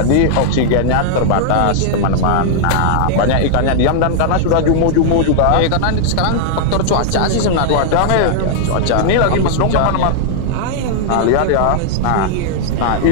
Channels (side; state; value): both; different; correlation -0.01